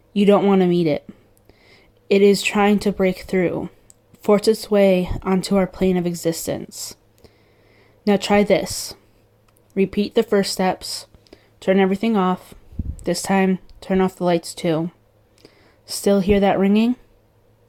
you don't want to meet it. It is trying to break through, force its way onto our plane of existence. Now try this. Repeat the first steps. Turn everything off. This time, turn off the lights too. Still hear that ringing?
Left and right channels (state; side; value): identical; both; correlation 1.00